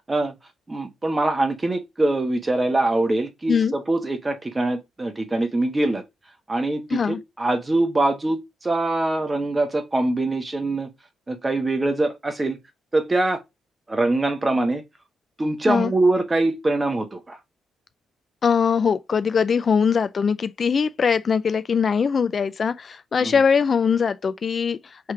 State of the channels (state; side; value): normal; both; correlation 0.87